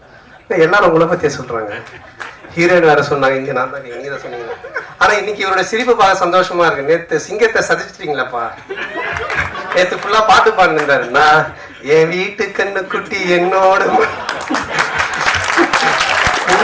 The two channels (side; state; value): both; identical; correlation 1.00